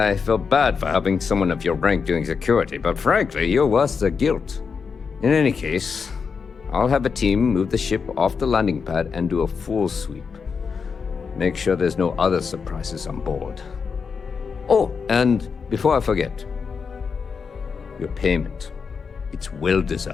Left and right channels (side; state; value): right; quieter; 5.7 dB